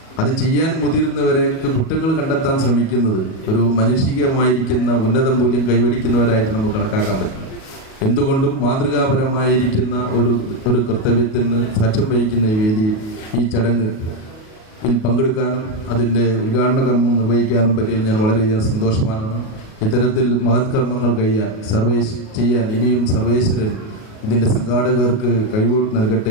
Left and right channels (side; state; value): right; late; 38 ms